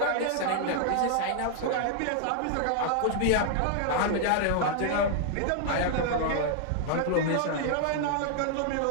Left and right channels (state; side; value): different; both; correlation -0.01